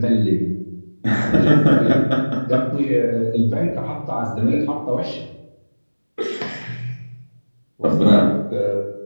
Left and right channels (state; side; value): inverted; both; correlation -1.00